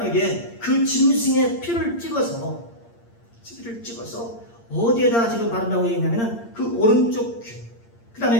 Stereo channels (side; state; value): right; late; 8.7 ms